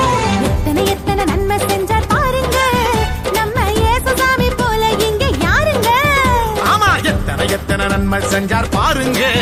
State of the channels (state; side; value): identical; both; correlation 1.00